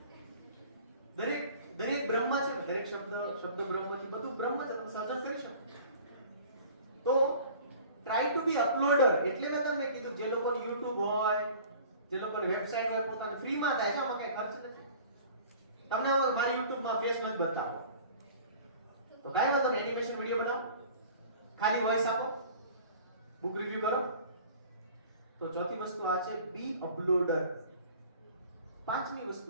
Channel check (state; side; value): inverted; both; correlation -0.46